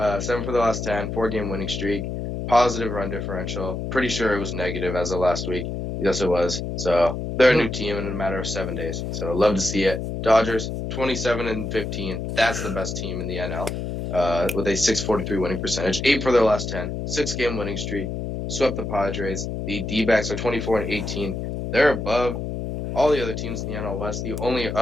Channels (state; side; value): noise; left; hum, 4 dB below the sound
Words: for the last 10, 4-game winning streak, positive run differential. Pretty sure it was negative as of last week. Yes, it was. So they're a new team in a matter of 7 days. So love to see it. Dodgers 27-15. That's the best team in the NL. With a 643 winning percentage, 8 for their last 10, 6-game winning streak, swept the Padres. The D-backs are 24-18. They're above all the other teams in the NL West. The only